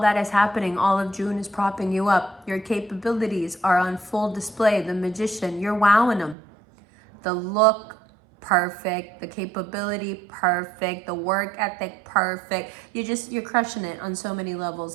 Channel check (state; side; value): drops out; left; at 6.4 s